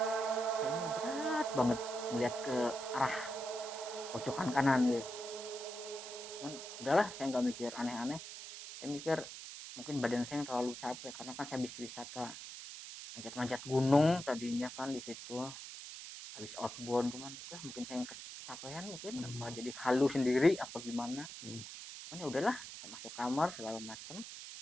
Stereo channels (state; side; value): noise; right; hiss, 10 dB below the sound